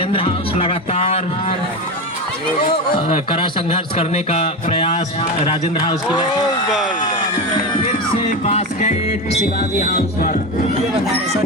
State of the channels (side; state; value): both; normal; correlation 0.20